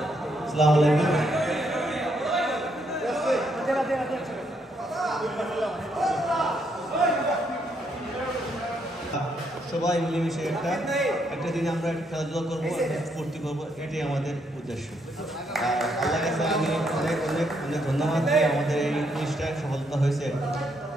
আসসালামু আলাইকুম। সবাই মিলেমিশে একটা দিনে আমরা খেলাধুলা করবো, ফুর্তি করবো, এটাই আমাদের উদ্দেশ্য। আর আল্লাহ কাছে আমি অনেক অনেক অনেক ধন্যবাদ দিই, আমাদের এই জিনিসটা সফলতা হয়েছে,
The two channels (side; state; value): both; normal; correlation 0.75